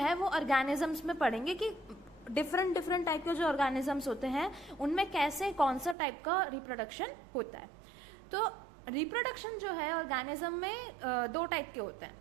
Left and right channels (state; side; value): drops out; left; at 6.0 s